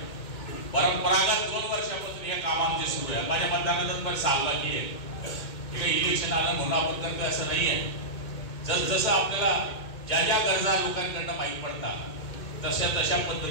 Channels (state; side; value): late; right; 2.2 ms